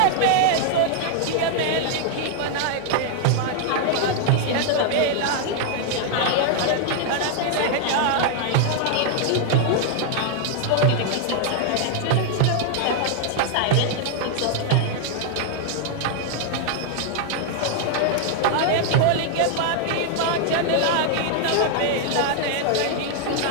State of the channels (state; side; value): different; both; correlation 0.00